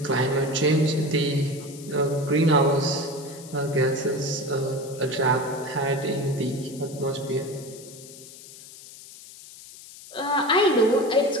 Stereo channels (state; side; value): noise; left; hiss, 18 dB below the sound